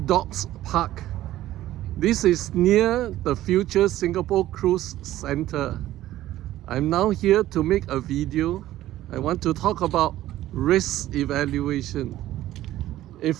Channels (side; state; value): left; quieter; 14.4 dB